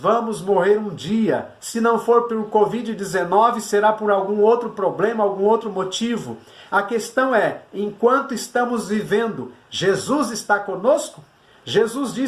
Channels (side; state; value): both; identical; correlation 1.00